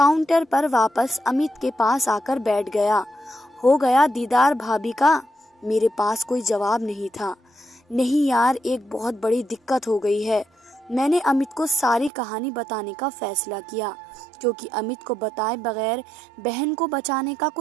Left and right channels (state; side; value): drops out; left; at 12.1 s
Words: पर वापस अमित के पास आकर बैठ गया। हो गया दीदार भाभी का? मेरे पास कोई जवाब नहीं था। नहीं यार, एक बहुत बड़ी दिक्कत हो गई है। मैंने अमित को सारी कहानी बताने का फैसला किया, क्योंकि अमित को बताए बगैर बहन को बचाने का